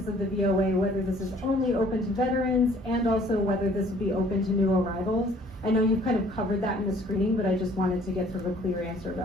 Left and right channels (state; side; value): normal; both; correlation 0.57